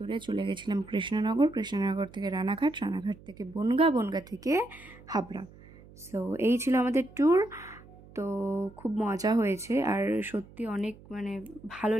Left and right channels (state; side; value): noise; right; hum, 21 dB below the sound